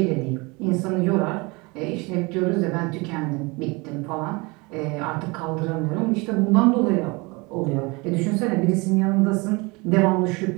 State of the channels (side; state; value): left; quieter; 26.5 dB